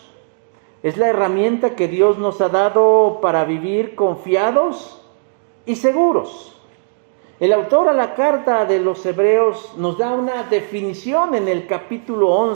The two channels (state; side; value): silent; left; digital silence